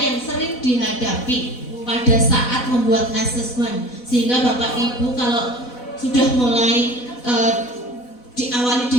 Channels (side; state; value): right; late; 4.0 ms